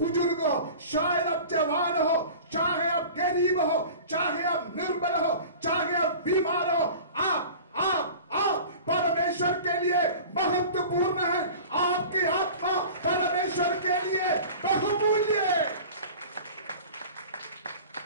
हो, शायद आप जवान हो, चाहे आप गरीब हो, चाहे आप निर्बल हो, चाहे आप बीमार हो, आप परमेश्वर के लिए महत्वपूर्ण है। आपकी आत्मा परमेश्वर के लिए बहुमूल्य है।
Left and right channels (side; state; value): both; inverted; correlation -0.39